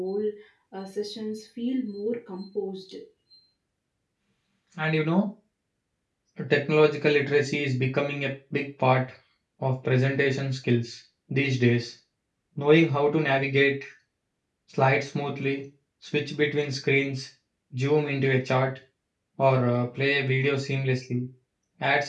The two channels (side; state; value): both; identical; correlation 1.00